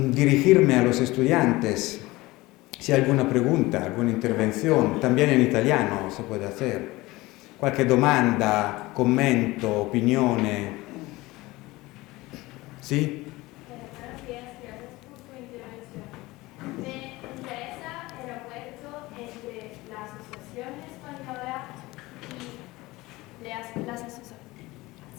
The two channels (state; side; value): quieter; right; 20.2 dB